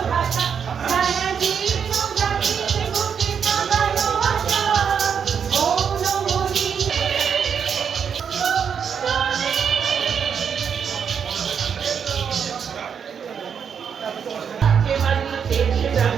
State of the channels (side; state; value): left; quieter; 7.2 dB